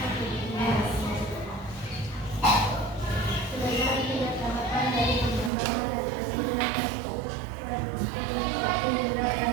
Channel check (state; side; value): drops out; left; at 5.5 s